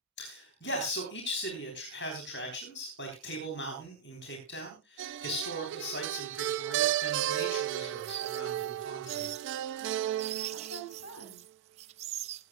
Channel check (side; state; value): left; quieter; 6.9 dB